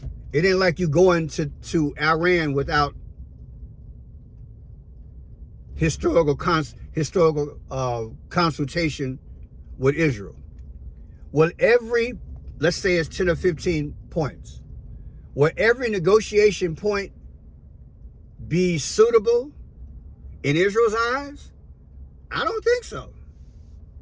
It ain't like you going to Iran without historical consultation with Israel. Well, let's say it's 10 or 15 points. Will every negotiation point be suitable in Israel's eyes? I don't think so.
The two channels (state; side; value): identical; both; correlation 1.00